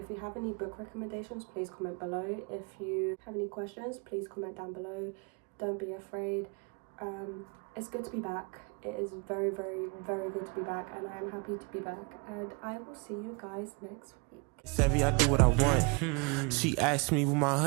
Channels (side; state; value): left; quieter; 31.8 dB